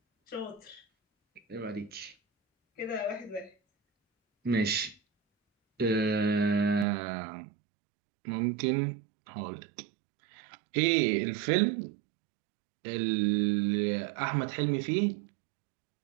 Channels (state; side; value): drops out; left; at 6.9 s